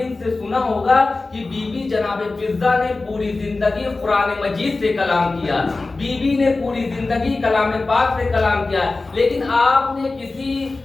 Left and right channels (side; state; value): right; quieter; 3.5 dB